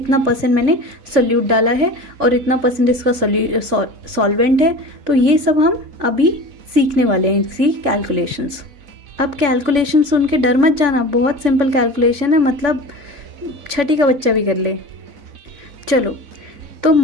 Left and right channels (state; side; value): late; left; 3.5 ms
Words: परसेंट मैंने सोल्यूट डाला है और इतना परसेंट इसका सॉल्वेंट है। तो ये सब हम अभी सीखने वाले हैं, इसी कैलकुलेशंस। अब कैलकुलेशन सुन के डर मत जाना, बहुत सिंपल कैलकुलेशन है, मतलब छठी का बच्चा भी कर ले। चलो, तो